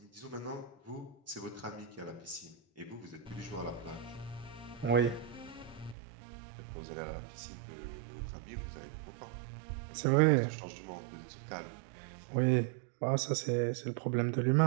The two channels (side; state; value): left; drops out; at 6.0 s